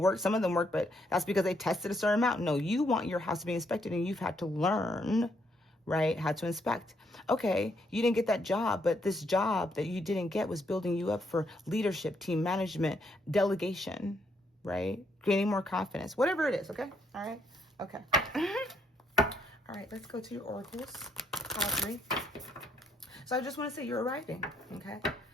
Some of them work, but that's because they tested a certain amount. No, you want your house to be inspected, and you've had to learn, right, how to inspect. Okay, you didn't get that job, but this job that you didn't get was building you up for leadership, team management, delegation, right? Gaining more confidence, whatever it is, okay? All right, okay. All right, let's go to your oracles, pile 3. So I just want to say you're arriving, okay?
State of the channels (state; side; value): normal; both; correlation 0.73